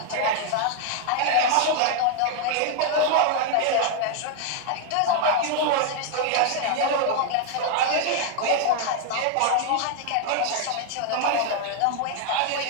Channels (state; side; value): different; both; correlation 0.00